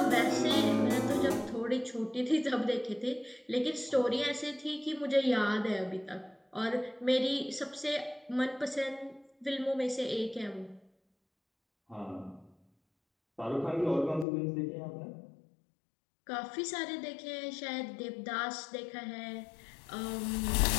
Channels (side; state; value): right; drops out; at 14.2 s